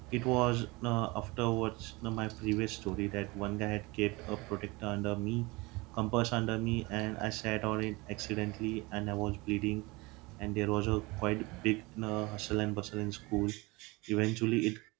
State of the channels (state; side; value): quieter; left; 24.1 dB